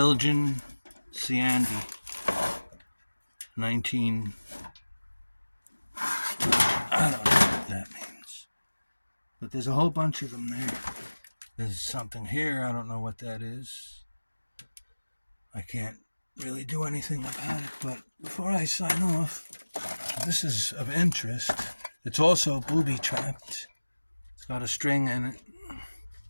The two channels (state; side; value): inverted; both; correlation -1.00